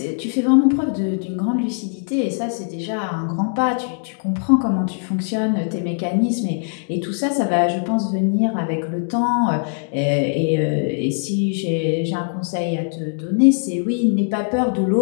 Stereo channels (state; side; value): silent; right; digital silence